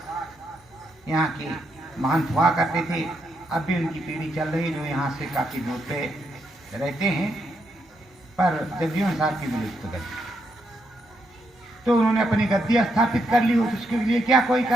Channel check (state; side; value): normal; both; correlation 0.79